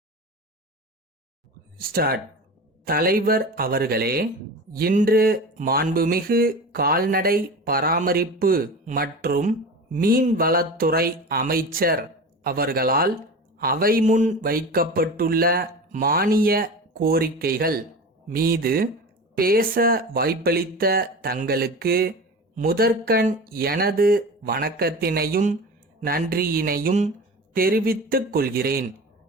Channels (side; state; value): both; normal; correlation 0.32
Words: Start. தலைவர் அவர்களே, இன்று மாண்புமிகு கால்நடை பராமரிப்பு மற்றும் மீன்வளத்துறை அமைச்சர் அவர்களால் அவை முன் வைக்கப்பட்டுள்ள மானிய கோரிக்கைகள் மீது பேச வாய்ப்பளித்த தங்களுக்கு முதற்கண் எனது வணக்கத்தினையும் நன்றியினையும் தெரிவித்துக் கொள்கிறேன்.